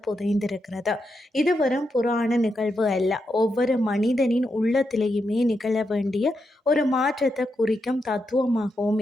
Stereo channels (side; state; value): both; normal; correlation 0.84